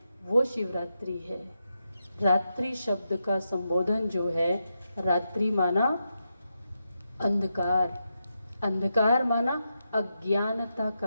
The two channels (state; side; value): inverted; both; correlation -0.86